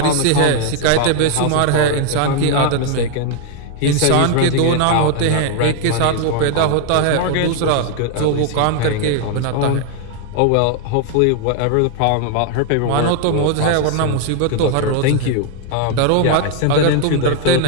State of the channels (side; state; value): both; different; correlation 0.00